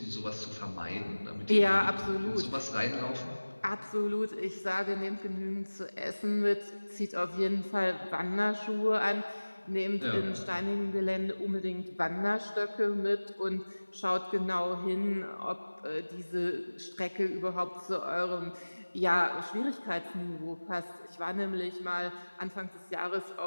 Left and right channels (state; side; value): inverted; both; correlation -1.00